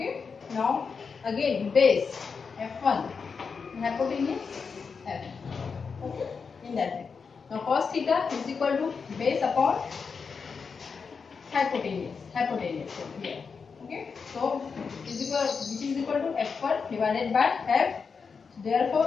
now again base F1, hypotenuse F. Okay, in that way. Now cos theta is equal to base upon hypotenuse here. Okay, so which is equal to F1 divided by F. Therefore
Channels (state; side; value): quieter; right; 5.5 dB